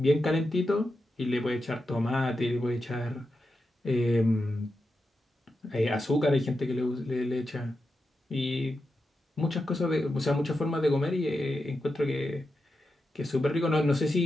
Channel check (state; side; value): normal; both; correlation 0.88